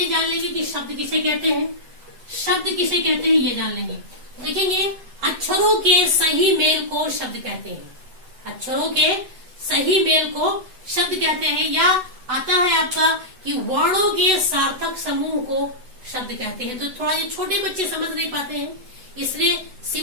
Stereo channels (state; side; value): late; left; 7.9 ms